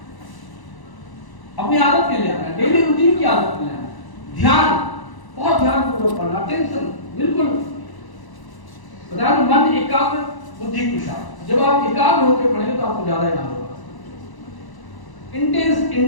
अपनी आदत में ले आना, डेली रूटीन की आदत में ले आना। ध्यान, बहुत ध्यानपूर्वक पढ़ना। अटेंशन बिल्कुल बता दो, मन एकाग्र, बुद्धि कुशल। जब आप एकाग्र होकर पढ़ेंगे तो आपको ज्यादा याद होगा।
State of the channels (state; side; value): late; right; 1.0 ms